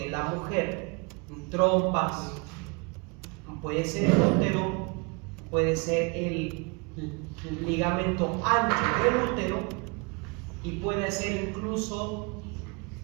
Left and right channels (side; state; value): left; quieter; 30.3 dB